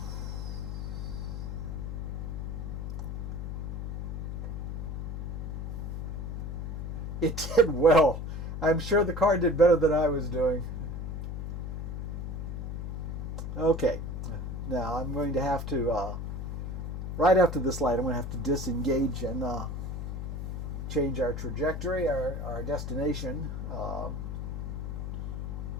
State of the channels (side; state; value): left; noise; hum, 4 dB below the sound